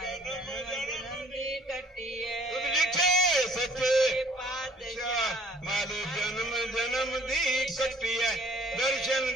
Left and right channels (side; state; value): both; normal; correlation 0.58